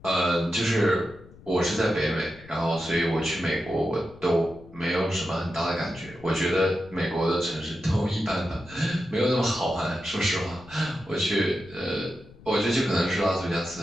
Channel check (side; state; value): left; noise; rumble, 21 dB below the sound